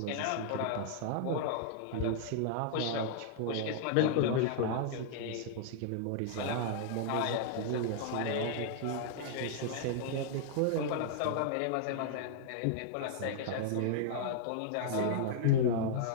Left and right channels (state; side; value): different; both; correlation -0.01